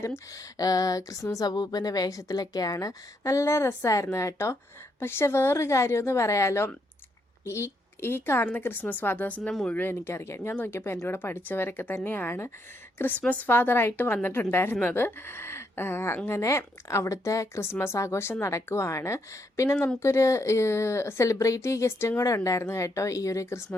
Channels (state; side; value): normal; both; correlation 0.77